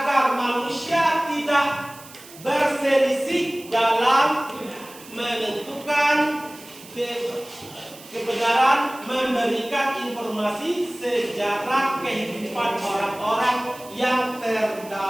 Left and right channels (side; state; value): right; noise; hiss, 19 dB below the sound